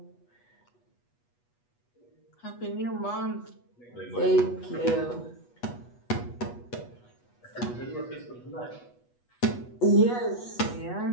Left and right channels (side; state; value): right; late; 8.2 ms